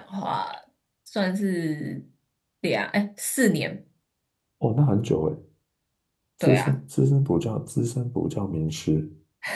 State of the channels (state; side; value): identical; both; correlation 1.00